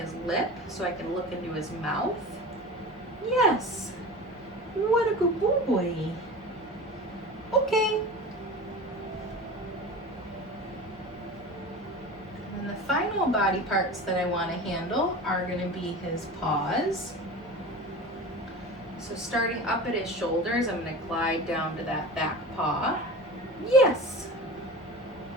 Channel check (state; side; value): normal; both; correlation 0.33